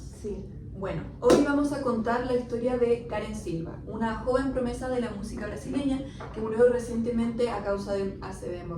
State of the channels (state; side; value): identical; both; correlation 1.00